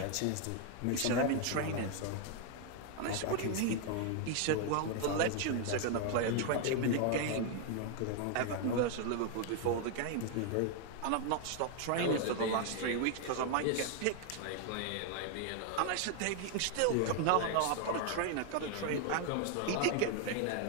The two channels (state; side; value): different; both; correlation 0.00